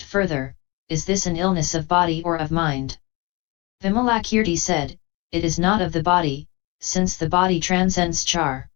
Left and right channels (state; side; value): quieter; right; 25.5 dB